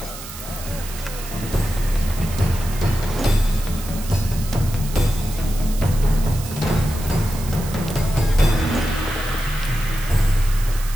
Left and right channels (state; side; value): noise; right; hiss, 13 dB below the sound